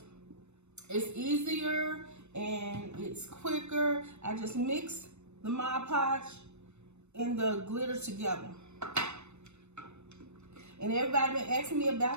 it's easier and it's quicker. I just mix the Mod Podge and the glitter together. And everybody been asking me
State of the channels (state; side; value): late; left; 0.81 ms